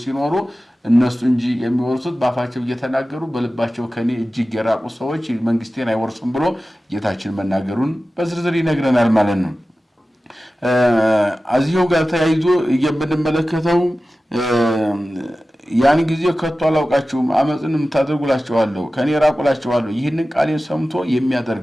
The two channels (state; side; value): normal; both; correlation 0.95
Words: ሲኖሩ እነሱ እንጂ የሚወርሱት በአፋቸው እየተናገሩ በልባቸው ከኔ እጅግ የራቁ ሰዎች መንግስቴን አይወርሱም ብሎ ጌታችን መናገሩን በዝርዝር ይነግረናል ማለት ነው። እዚሁ ጋር ተያይዞ የምንመለከተው ያን ጊዜ ከቶ አላውቃችሁም አመፅን የምታደርጉላችኋለሁ ከኔ ራቁላችኋለሁ ይህንን ቃሌን ሰምቶ